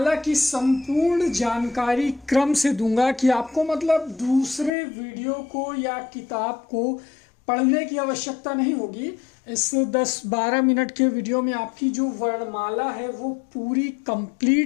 की संपूर्ण जानकारी क्रम से दूंगा कि आपको मतलब दूसरे वीडियो को या किताब को पढ़ने की आवश्यकता नहीं होगी। इस 10-12 मिनट के वीडियो में आपकी जो वर्णमाला है वो पूरी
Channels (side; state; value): right; drops out; at 4.7 s